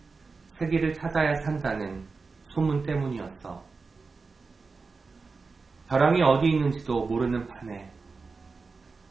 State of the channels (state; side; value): quieter; left; 4.4 dB